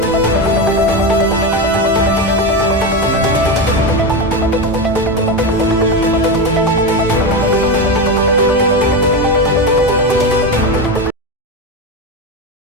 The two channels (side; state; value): both; normal; correlation 0.16